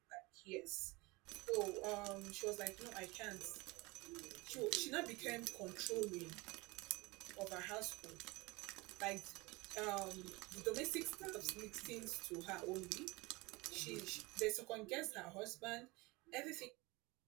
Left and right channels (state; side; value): quieter; left; 23.8 dB